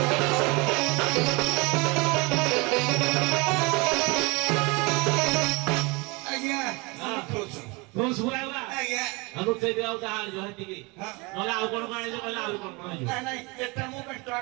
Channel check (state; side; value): quieter; left; 27.0 dB